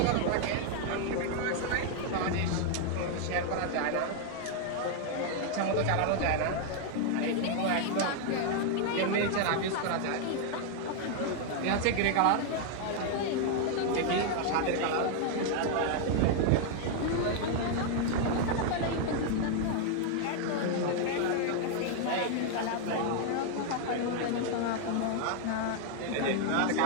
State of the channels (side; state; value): both; different; correlation 0.00